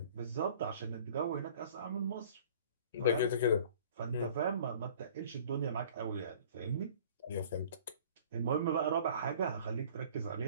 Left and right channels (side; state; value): both; inverted; correlation -0.49